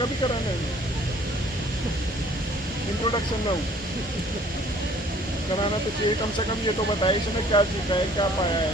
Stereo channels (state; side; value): normal; both; correlation 0.56